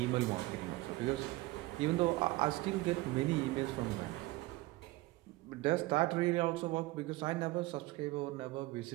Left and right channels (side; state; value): left; quieter; 20.0 dB